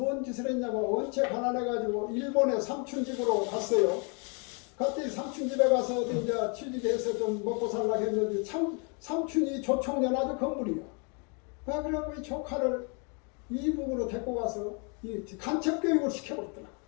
짓을 했냐면 원체 가난해가지고 일본에 삼촌집으로 갔어요. 그때 삼촌집에 가서 이제 취직해서 좀 먹고 살라고 했는데 삼촌이 조총련 아주 건물이야. 그래갖고 이 조카를 이북으로 데리고 가서 이 간첩교육을 시켜버렸더라.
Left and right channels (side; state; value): right; quieter; 35.7 dB